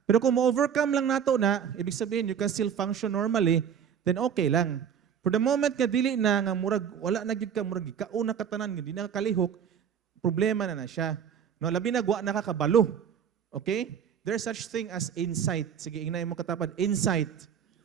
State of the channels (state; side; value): quieter; left; 8.0 dB